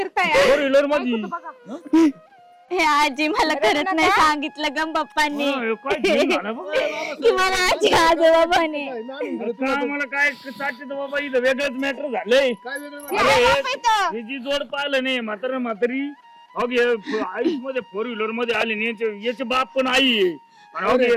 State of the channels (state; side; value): identical; both; correlation 1.00